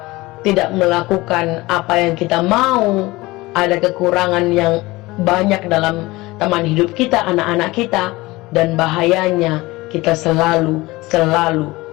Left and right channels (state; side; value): quieter; right; 20.8 dB